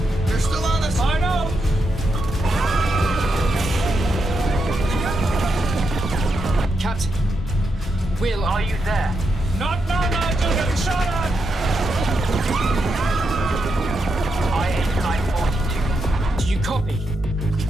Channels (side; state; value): both; normal; correlation 0.84